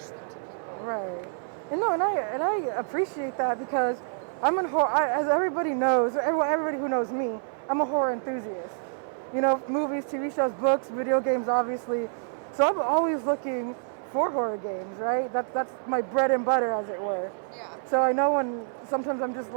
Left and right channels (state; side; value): silent; left; 60 dB below the other